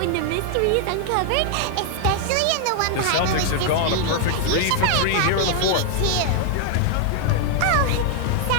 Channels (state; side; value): different; both; correlation 0.00